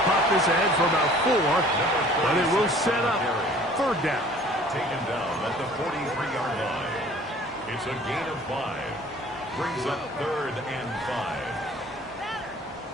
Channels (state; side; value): normal; both; correlation 0.51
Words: pop this ahead for about 4, but it will set up 3rd down. Taken down at the 43-yard line. It's a gain of 5. Brings up 3rd and 5.